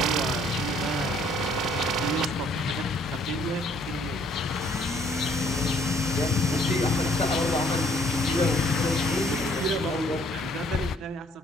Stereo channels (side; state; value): both; normal; correlation 0.62